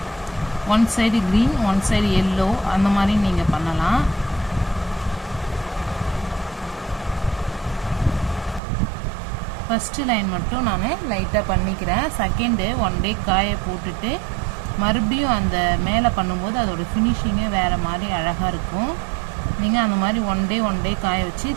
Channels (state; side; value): drops out; left; at 8.6 s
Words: One side green one side yellow அந்த மாதிரி நீங்கள் பண்ணலாம். ஃபஸ்ட்டு லைன் மட்டும் நான் லைட்டாக பண்ணிக்கிறேன். செகண்டு 1 டே காய போட்டுட்டு மறுபடியும் அந்த மேலே பண்ணும்போது அதோடய ஃபினிஷிங்கே வேறு மாதிரி அழகாக இருக்கும். நீங்கள் அந்த மாதிரி 1 டே காய வச்சு